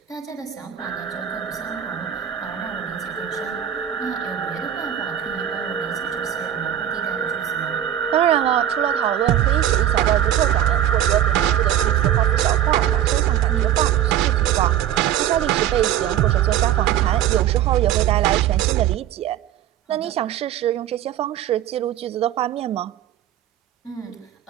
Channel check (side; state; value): left; quieter; 11.0 dB